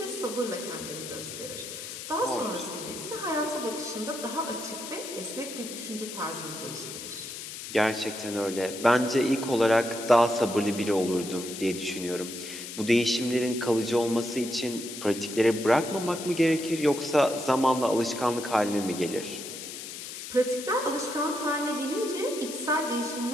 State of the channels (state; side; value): noise; left; hiss, 9 dB below the sound